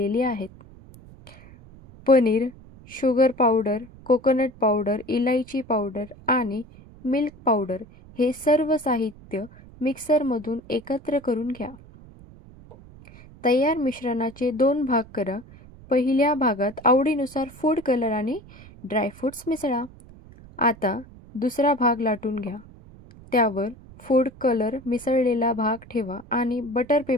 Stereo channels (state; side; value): noise; right; rumble, 21 dB below the sound